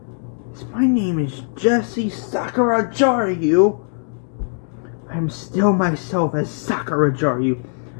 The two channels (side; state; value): right; silent; digital silence